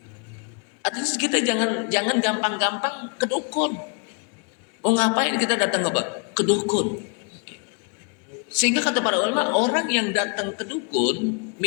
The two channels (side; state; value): right; quieter; 36.0 dB